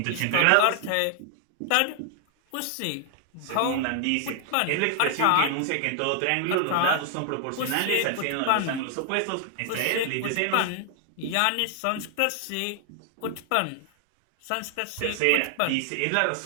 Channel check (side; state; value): both; different; correlation 0.00